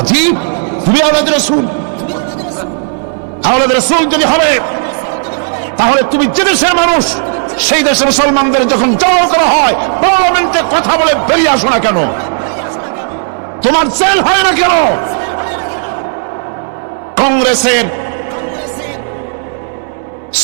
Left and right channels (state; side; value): silent; left; digital silence